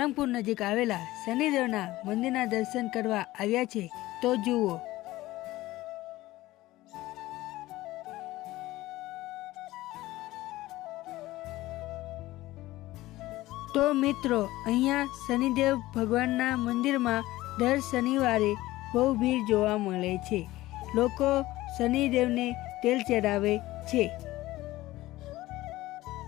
નજીક આવેલા શનિદેવના મંદિરના દર્શન કરવા આવ્યા છે, તો જુઓ। તો મિત્રો, અહીંયા શનિદેવ ભગવાનના મંદિરમાં દર શનિવારે બહુ ભીડ જોવા મળે છે। લોકો શનિદેવને તેલ ચડાવે છે।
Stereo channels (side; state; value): right; quieter; 17.3 dB